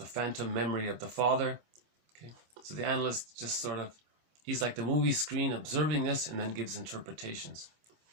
phantom memory of the father. Okay, so the analyst just sort of, he's like the movie screen observing this and then gives interpretations.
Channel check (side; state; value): left; late; 26 ms